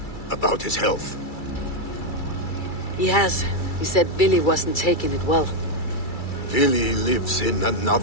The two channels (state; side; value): late; right; 2.3 ms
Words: about his health. He has. He said Billy wasn't taking it well. Billy lives in